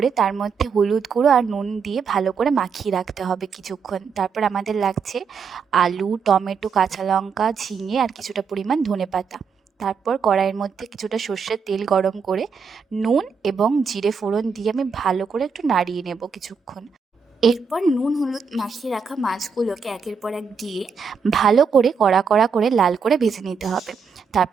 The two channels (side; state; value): left; quieter; 5.8 dB